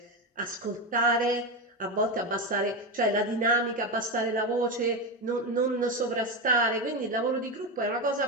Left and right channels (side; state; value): both; normal; correlation 0.14